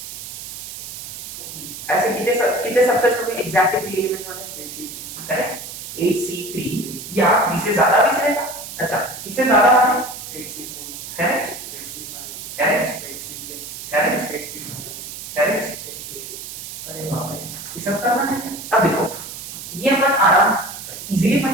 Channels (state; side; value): noise; right; hiss, 10 dB below the sound